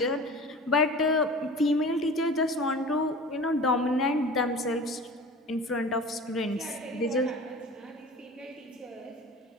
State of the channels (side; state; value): both; normal; correlation 0.38